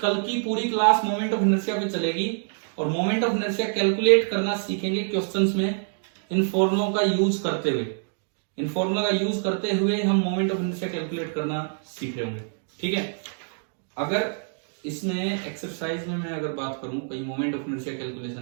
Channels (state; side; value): silent; left; 61 dB below the other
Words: की पूरी क्लास मोमेंट ऑफ इनर्शिया पे चलेगी, और मोमेंट ऑफ इनर्शिया कैलकुलेट करना सीखेंगे क्वेश्चंस में, इन फॉर्मुलों का यूज करते हुए, हम मोमेंट ऑफ इनर्शिया कैलकुलेट करना सीख रहे होंगे, ठीक है। अगर इसमें एक्सरसाइज में मैं अगर बात करूं, कहीं मोमेंट ऑफ इनर्शिया